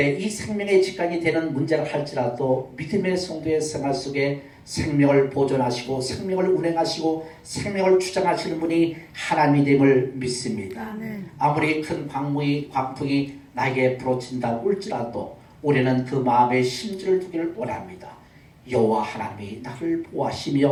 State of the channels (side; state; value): both; identical; correlation 1.00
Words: 이 생명의 직관이 되는 문제를 할지라도 믿음의 성도의 생활 속에 생명을 보존하시고 생명을 운행하시고 생명을 주장하시는 분이 하나님임을 믿습니다. 아무리 큰 광풍이 나에게 부러친다고 할지라도 우리는 그 마음의 심지를 두기를 원합니다. 여호와 하나님이 나를